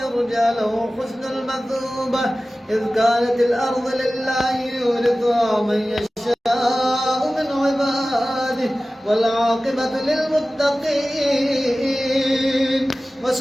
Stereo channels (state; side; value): normal; both; correlation 0.96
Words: يرجى له حسن المثوبة، إذ كانت الأرض لله يورثها من يشاء من عباده والعاقبة للمتقين.